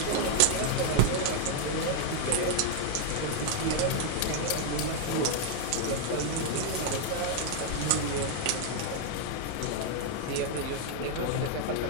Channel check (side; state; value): both; different; correlation 0.00